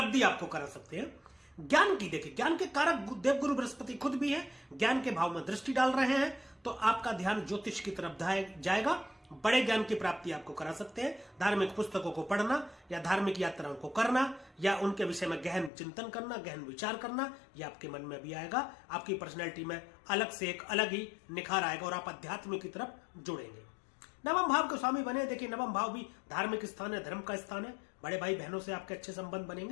आपको करा सकते हैं। ज्ञान की देखिए, ज्ञान के कारक देवगुरु बृहस्पति खुद भी है, ज्ञान के भाव में दृष्टि डाल रहे हैं, तो आपका ध्यान ज्योतिष की तरफ जाएगा। बड़े ज्ञान की प्राप्ति आपको करा सकते हैं। धार्मिक पुस्तकों को पढ़ना या धार्मिक यात्राओं को करना या उनके विषय में गहन चिंतन करना, गहन विचार करना, यह आपके मन में भी आएगा। आपकी पर्सनैलिटी में अलग से एक अलग ही निखार आएगा और आप अध्यात्म की तरफ जुड़ेंगे। नवम भाव के स्वामी बने, देखिए नवम भाव भी धार्मिक स्थान है, धर्म का स्थान है। बड़े भाई बहनों से आपके अच्छे संबंध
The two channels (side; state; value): right; drops out; at 15.7 s